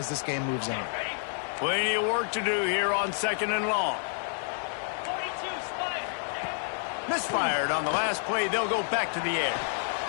this game moves on. Plenty of work to do here on 2nd and long. Misfired on the last play. They'll go back to the air.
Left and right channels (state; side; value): silent; right; digital silence